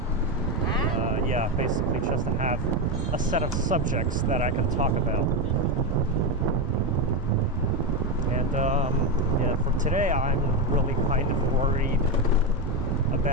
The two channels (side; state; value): both; normal; correlation 0.11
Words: yeah, basically just to have a set of subjects that I can talk about. And yeah, for today I'm really kind of worried